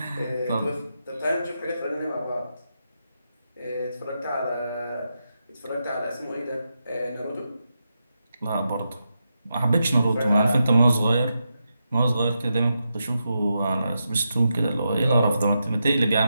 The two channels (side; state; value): both; inverted; correlation -0.87